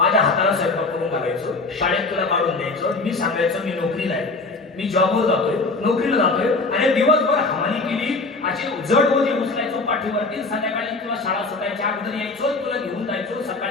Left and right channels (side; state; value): right; quieter; 3.6 dB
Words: हाताला स्वयंपाक करून घालायचो, शाळेत तुला काढून द्यायचो, मी सांगायचो मी नोकरीला आहे, मी जॉबवर जातोय, नोकरीला जातोय, आणि दिवसभर हमाली केली, असे जड ओझे उचलायचो पाठीवरती. संध्याकाळी तुला शाळा सुटायच्या अगोदर यायचो, तुला घेऊन जायचो,